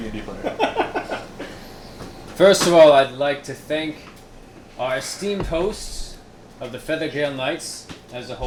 player. First of all, I'd like to thank our esteemed hosts of the Feathergale Knights as a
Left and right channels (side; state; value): both; identical; correlation 1.00